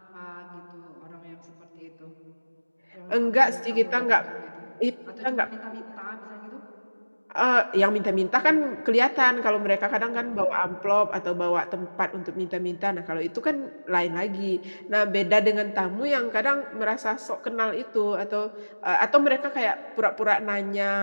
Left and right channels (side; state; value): both; inverted; correlation -1.00